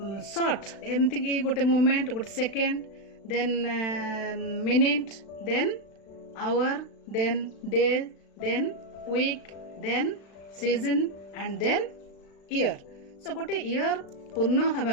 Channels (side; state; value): right; late; 36 ms